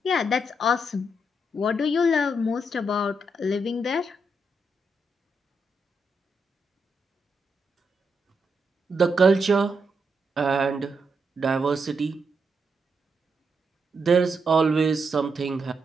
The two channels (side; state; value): both; normal; correlation 0.81